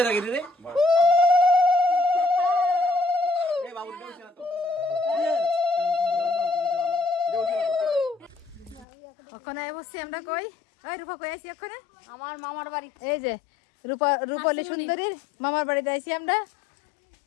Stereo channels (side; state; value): right; drops out; at 8.8 s